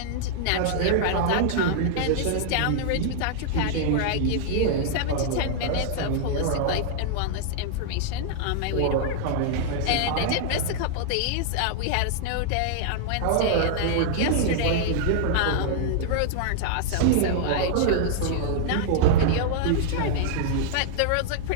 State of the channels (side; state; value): both; different; correlation -0.01